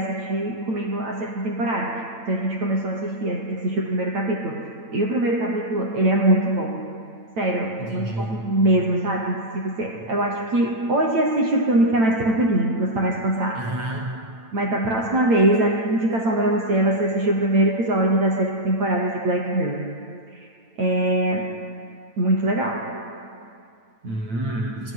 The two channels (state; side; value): late; left; 8.9 ms